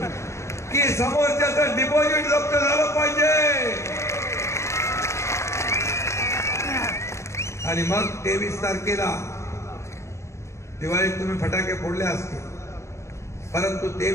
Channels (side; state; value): right; late; 0.13 ms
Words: की समोरच्याचं डिपॉझिट जप्त झालं पाहिजे. आणि मग 23 तारखेला दिवाळीत तुम्ही फटाके फोडले असतील, परंतु